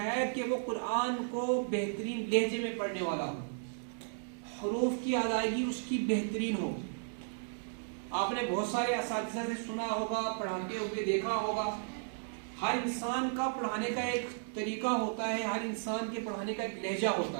کہ وہ قرآن کو بہترین لہجے میں پڑھنے والا ہو، حروف کی ادائیگی اس کی بہترین ہو. آپ نے بہت سارے اساتذہ سے سنا ہوگا، پڑھاتے ہوئے دیکھا ہوگا، ہر انسان کا پڑھانے کا ایک طریقہ ہوتا ہے، ہر انسان کے پڑھانے کا ایک لہجہ ہوتا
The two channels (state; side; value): silent; left; digital silence